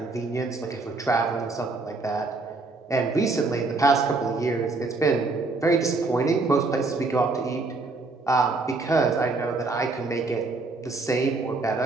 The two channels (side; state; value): left; quieter; 3.5 dB